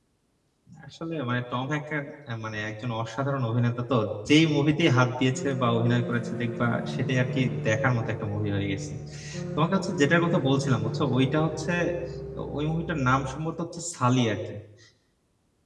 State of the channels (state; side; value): identical; both; correlation 1.00